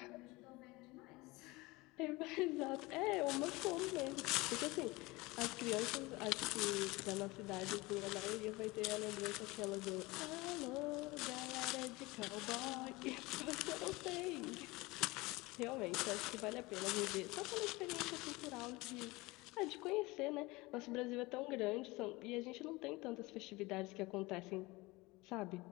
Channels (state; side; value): quieter; right; 22.4 dB